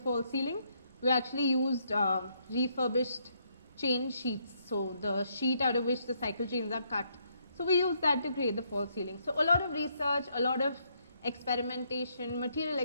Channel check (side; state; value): both; inverted; correlation -0.73